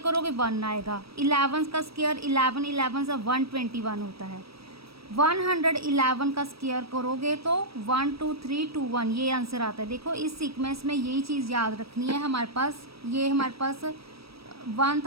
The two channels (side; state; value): left; late; 0.76 ms